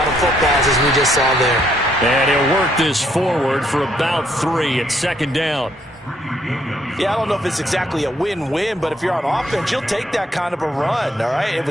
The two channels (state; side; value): normal; both; correlation 0.70